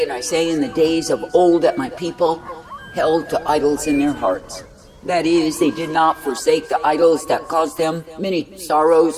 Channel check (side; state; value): both; identical; correlation 1.00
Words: and I say in the days of old that my people held to idols in their hearts. That is, they did not forsake the idols that caused them many